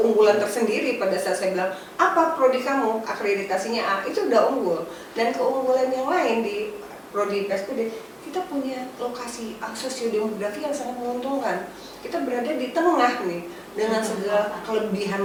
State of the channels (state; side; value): identical; both; correlation 1.00